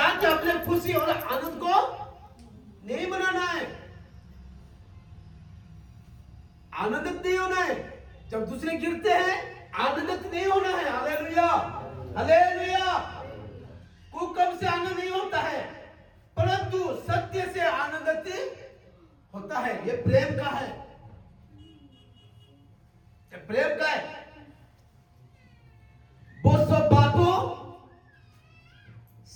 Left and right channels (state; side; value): identical; both; correlation 1.00